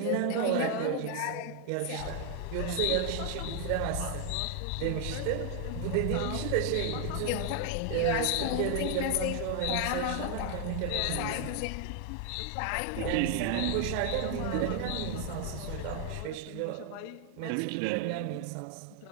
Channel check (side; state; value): both; different; correlation 0.00